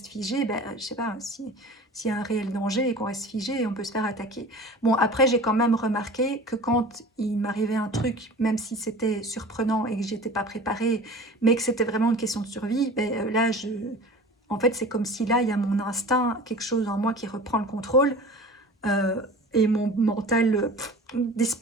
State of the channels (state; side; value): normal; both; correlation 0.39